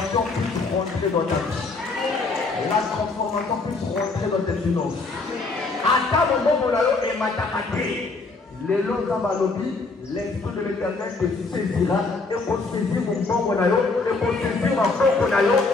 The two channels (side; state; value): right; quieter; 3.8 dB